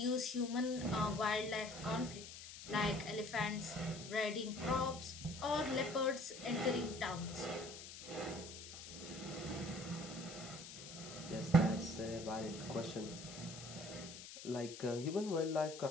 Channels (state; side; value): noise; left; hiss, 12 dB below the sound